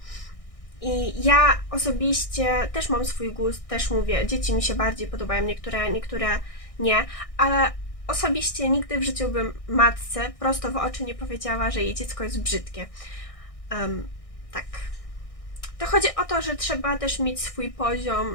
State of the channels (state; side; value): late; right; 1.6 ms